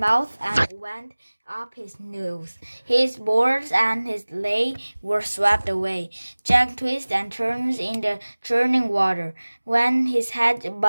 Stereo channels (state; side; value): inverted; both; correlation -1.00